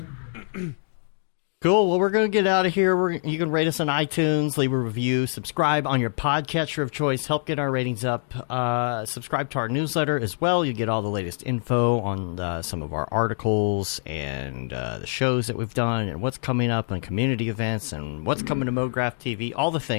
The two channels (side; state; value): right; silent; digital silence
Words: Cool. Well, we're going to get out of here. You can rate us on iTunes, leave a review, subscribe on your podcatcher of choice, help get our ratings up. Subscribe to our newsletter as well. You get all the latest info on some of our articles and the shows that we've done and what's coming up and community events and what's coming to Mograph TV, all the